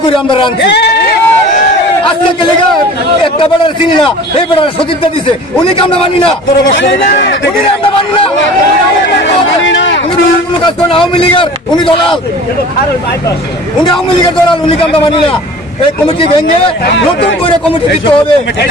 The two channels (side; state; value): both; normal; correlation 0.42